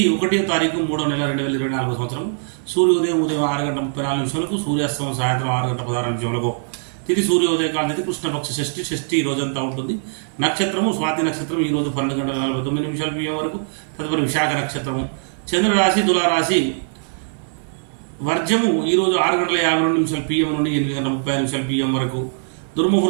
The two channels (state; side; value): silent; left; 61 dB below the other